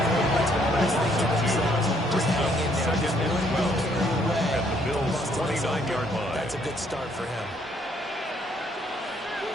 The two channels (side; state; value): both; normal; correlation 0.67